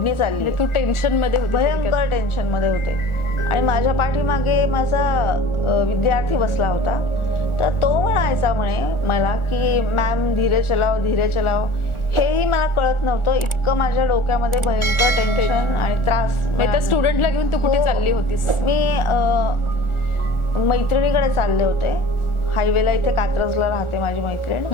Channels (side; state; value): right; late; 1.4 ms